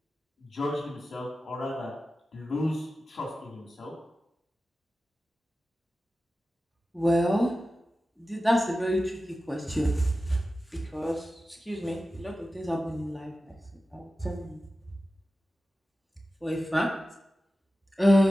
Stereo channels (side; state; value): both; normal; correlation 0.94